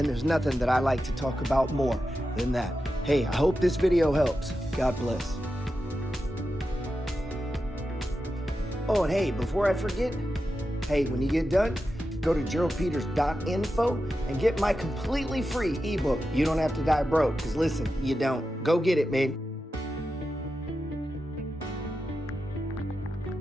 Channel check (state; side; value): normal; both; correlation 0.90